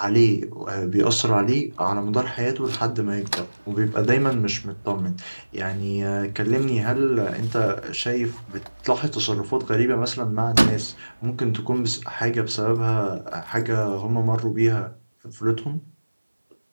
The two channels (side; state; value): both; inverted; correlation -1.00